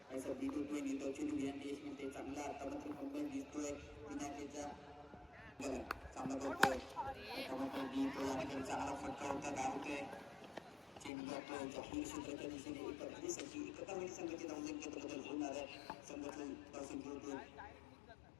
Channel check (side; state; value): right; drops out; at 11.1 s